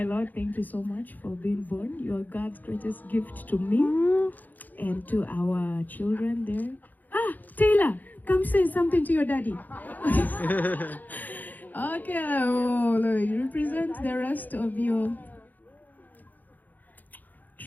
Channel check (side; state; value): right; late; 0.084 ms